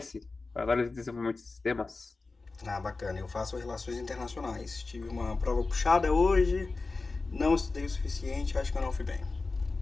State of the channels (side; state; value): right; quieter; 3.8 dB